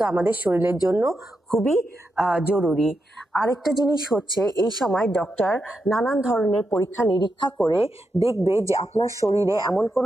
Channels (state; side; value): normal; both; correlation 0.86